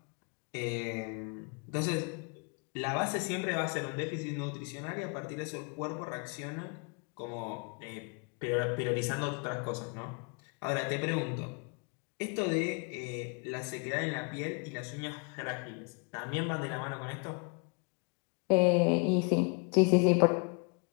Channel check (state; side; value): quieter; right; 35.0 dB